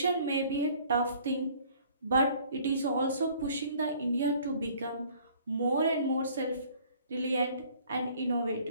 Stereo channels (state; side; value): inverted; both; correlation -0.55